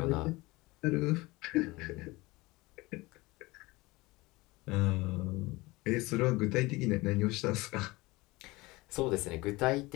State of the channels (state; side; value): quieter; right; 21.9 dB